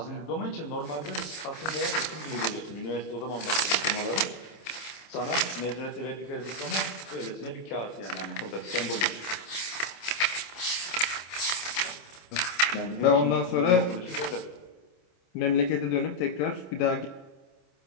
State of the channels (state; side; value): late; right; 27 ms